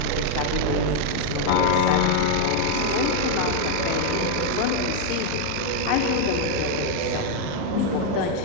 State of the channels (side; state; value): both; different; correlation 0.00